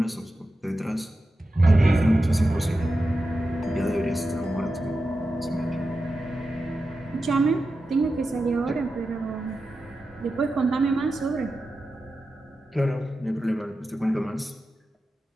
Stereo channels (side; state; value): both; normal; correlation 0.91